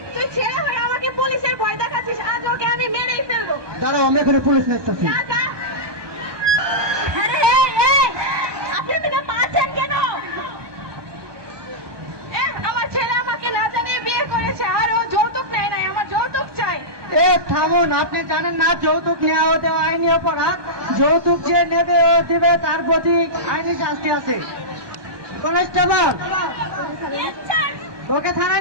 তুই ছেলে হয়ে আমাকে পুলিশের ভয় দেখাচ্ছিস? আজ ওকে আমি মেরেই ফেলবো। দাঁড়াও, আমি এখানে পুলিশ নেছি। যা যা। আরে এই এই, আপনি এদিকে পাচ্ছেন কেন? আমার ছেলে আমাকে না জানিয়ে বিয়ে করেছে আর ও যৌতুক নেয় নাই। আমার যৌতুক চাই। এ থামুন, আপনি জানেন না যৌতুক নেওয়া হতে আইনি অপরাধ? যৌতুক যে নেবে ও দিবে, তার প্রতি আইনি শাস্তি আছে। কনস্টেবল, ওকে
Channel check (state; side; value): late; left; 1.2 ms